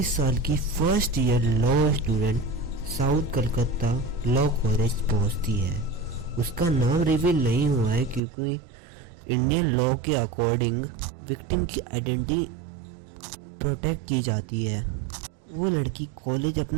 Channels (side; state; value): left; drops out; at 8.2 s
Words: साल की first year law student south Calcutta law college पहुंचती है। उसका नाम reveal नहीं हुआ है क्योंकि इंडियन लॉ के अकॉर्डिंग विक्टिम की आइडेंटिटी प्रोटेक्ट की जाती है। वो लड़की कॉलेज